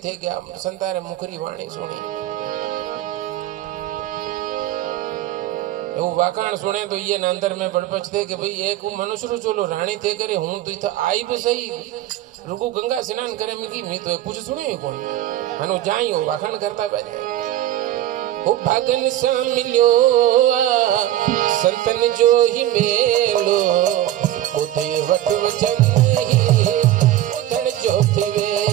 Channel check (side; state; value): left; quieter; 13.3 dB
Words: थे गया संतारे मुखरी वाणी सुनी। वो वाकाण सुने तो ये अंदर में बड़पच थे कि भाई एक मनुष्य रू चलो रानी थे करे हूं तो इतना आई भी सही रुको गंगा स्नान करे मिकी मैं तो कुछ सुने कौन हनो जाई हो वाखाण करता बैठे ओ भागन सा मिलो संतन जो ही मेलो उधे वट वचन ही उधर जो थे